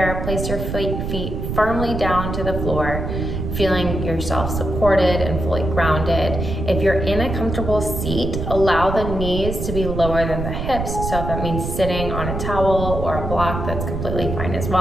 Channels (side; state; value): right; noise; rumble, 4 dB below the sound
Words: place your feet firmly down to the floor, feeling yourself supported and fully grounded. If you're in a comfortable seat, allow the knees to be lower than the hips. So if that means sitting on a towel or a block, that's completely fine as